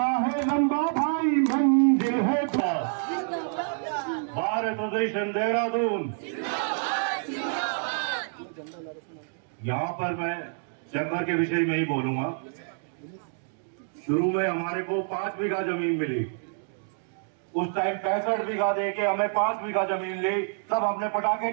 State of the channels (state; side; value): silent; left; digital silence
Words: है लंबा भाई मंजिल है भारत देशन देहरादून। यहाँ पर मैं चैम्बर के विषय में ही बोलूंगा। शुरू में हमारे को 5 बीघा जमीन मिली, उस टाइम 65 बीघा दे के हमें 5 बीघा जमीन ली, तब हमने पटाखे